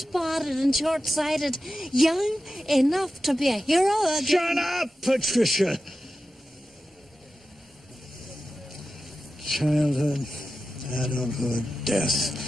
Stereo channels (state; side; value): normal; both; correlation 0.93